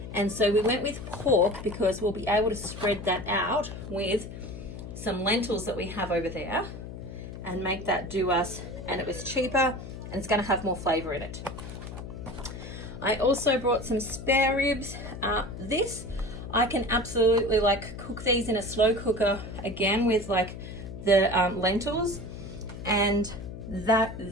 And so we went with pork because we'll be able to spread that out with some lentils that we have over there and make that do us, and it was cheaper and it's going to have more flavor in it. I also brought some spare ribs. This I can absolutely like cook these in a slow cooker again with like the lentils, and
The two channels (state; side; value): noise; left; hum, 10 dB below the sound